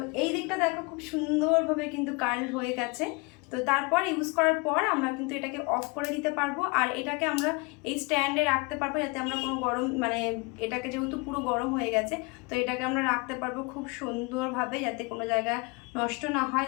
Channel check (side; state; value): right; quieter; 29.1 dB